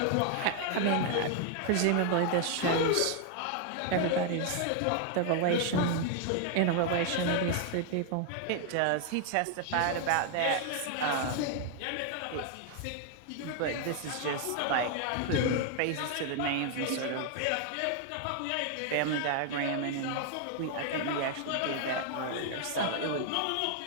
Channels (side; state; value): both; different; correlation 0.00